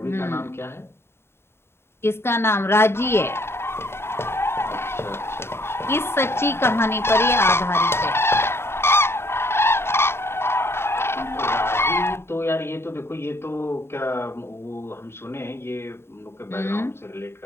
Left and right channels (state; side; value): late; right; 0.12 ms